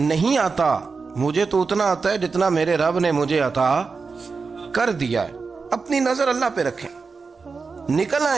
آتا، مجھے تو اتنا آتا ہے جتنا میرے رب نے مجھے عطا کر دیا ہے۔ اپنی نظر اللہ پہ رکھیں، نکل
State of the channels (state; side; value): quieter; left; 4.7 dB